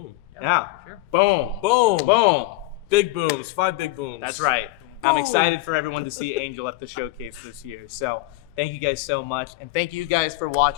Yeah. For sure. Boom. Boom. Boom. Big booms. 5 big booms. That's right. I'm excited for everyone to see Angel at the showcase this year. So thank you guys so much. And thank you guys for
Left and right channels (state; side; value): quieter; right; 18.5 dB